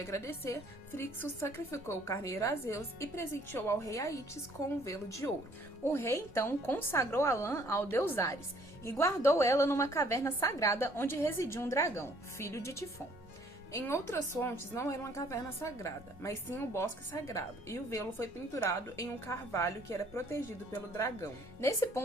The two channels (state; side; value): normal; both; correlation 0.60